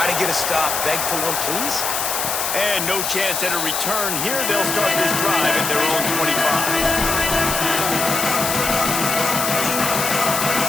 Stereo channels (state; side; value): noise; left; hiss, 1 dB below the sound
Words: to get a stop, beg for one, please. And no chance at a return here. They'll start this drive at their own 25.